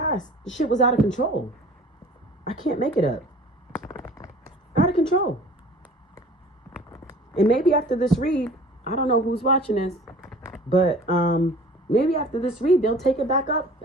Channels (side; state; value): both; normal; correlation 0.46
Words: the shit was out of control. I can't make it up. Out of control. And maybe after this read, I don't know who's watching this, but maybe after this read, they'll take it back up